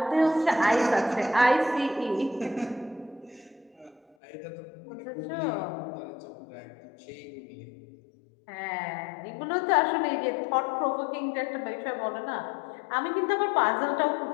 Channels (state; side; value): drops out; right; at 4.2 s